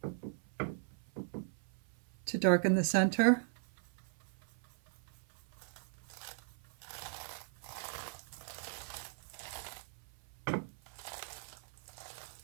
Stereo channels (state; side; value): silent; left; 52 dB below the other